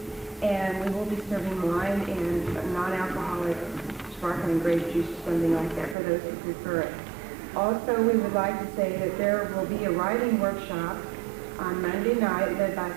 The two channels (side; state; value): left; drops out; at 6.0 s